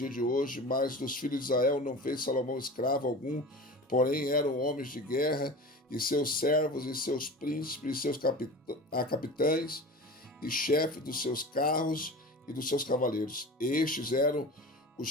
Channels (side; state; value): both; normal; correlation 0.34